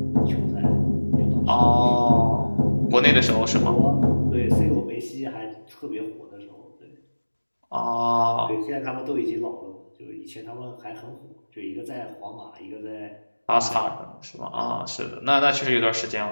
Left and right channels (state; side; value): inverted; both; correlation -1.00